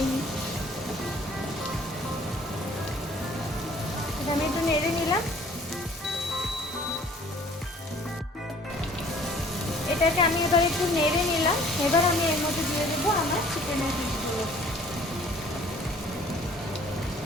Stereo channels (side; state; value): both; normal; correlation 0.54